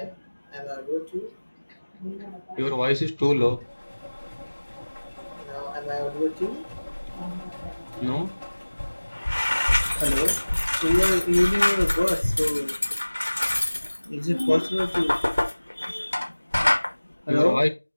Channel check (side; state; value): both; inverted; correlation -1.00